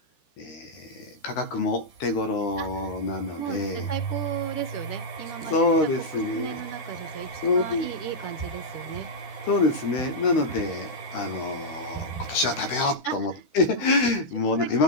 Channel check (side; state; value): right; late; 13 ms